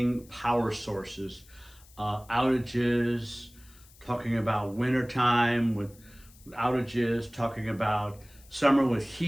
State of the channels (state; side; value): noise; left; hiss, 25 dB below the sound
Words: power sources, outages, talking about wintertime with outages, talking about summer with